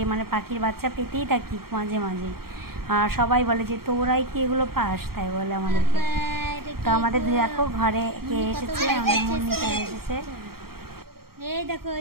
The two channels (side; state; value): left; late; 0.94 ms